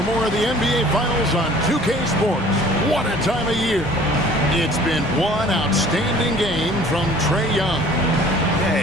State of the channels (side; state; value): both; normal; correlation 0.50